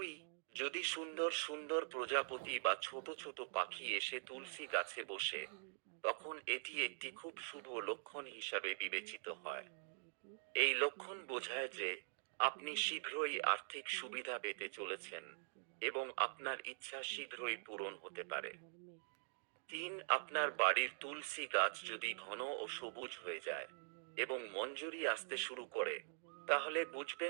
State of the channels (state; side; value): silent; left; digital silence